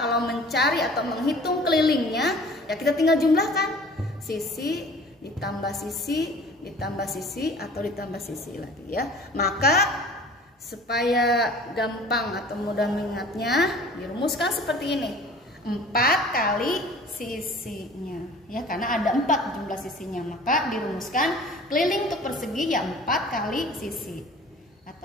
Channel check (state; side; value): normal; both; correlation 0.46